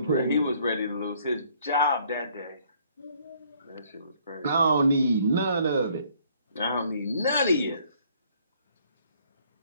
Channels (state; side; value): inverted; both; correlation -0.63